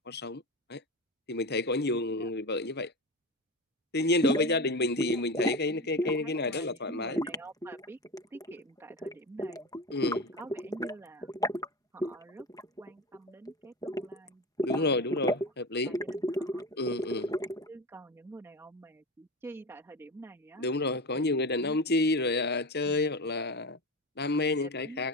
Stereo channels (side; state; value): both; normal; correlation 0.24